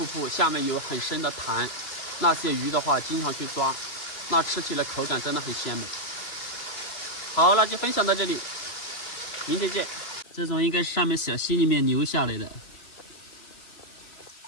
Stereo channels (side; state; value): right; late; 3.0 ms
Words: 布，下面有很深的潭，那些鱼的话经常去抓，那吃起来口感真的很鲜美。好，那就分享到这里，明天见。这种应该是上面小溪里面流下来的，